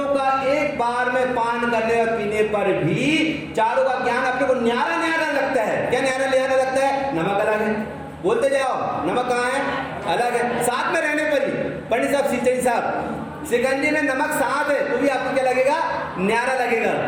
का एक बार में पान करने और पीने पर भी चारों का ज्ञान अपने को न्यारा न्यारा लगता है। क्या न्यारा न्यारा लगता है? नमक अलग है, बोलते जाओ, नमक कहाँ है? अलग है। साथ में रहने पर ही पंडित साहब, सिंचई साहब, शिकंजी में नमक साथ है तो भी आपको क्या लगेगा? न्यारा लगेगा।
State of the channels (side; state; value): both; identical; correlation 1.00